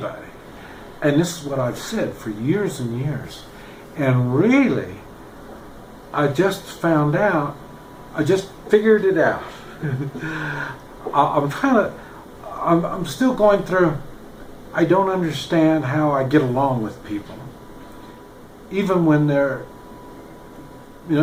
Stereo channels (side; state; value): both; identical; correlation 1.00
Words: And this is what I've said for years and years. And really, I just found out, I just figured it out. I'm still going through, I don't understand how I get along with people. Even when they're,